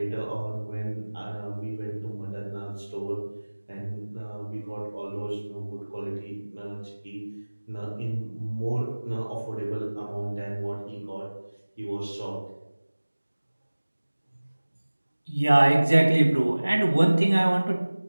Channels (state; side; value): inverted; both; correlation -1.00